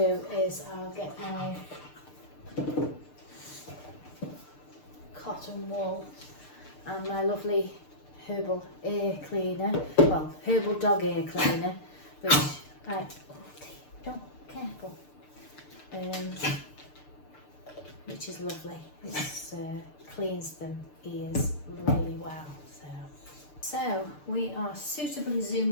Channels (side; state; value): right; late; 6.7 ms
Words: is I'll get my cotton wool and my lovely herbal ear cleaner, well, herbal dog ear cleaner, which careful, which is lovely. It cleans them ears really well. So we are suitably